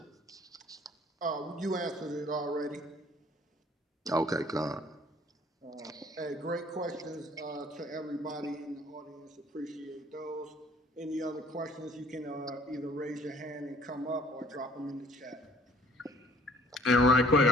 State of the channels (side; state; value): both; normal; correlation 0.56